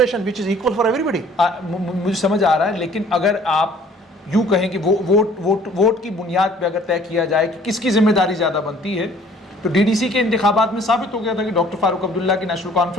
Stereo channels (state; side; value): normal; both; correlation 0.55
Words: which is equal for everybody. मुझे समझ आ रहा है, लेकिन अगर आप यूं कहें कि वोट की बुनियाद पे अगर तय किया जाए कि किसकी जिम्मेदारी ज्यादा बनती है, तो DDC के इंतखाबात में साबित हो गया था कि डॉक्टर फारूक अब्दुल्ला की नेशनल